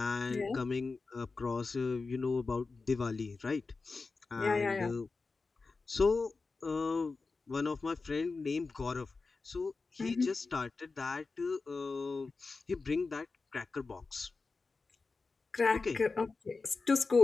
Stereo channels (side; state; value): right; quieter; 4.1 dB